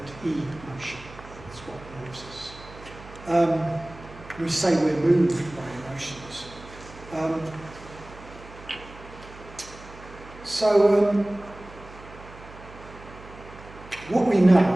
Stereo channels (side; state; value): right; noise; hum, 18 dB below the sound